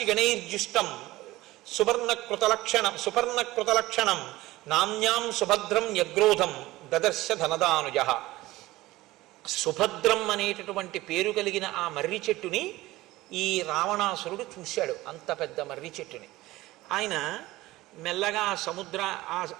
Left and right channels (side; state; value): left; quieter; 18.0 dB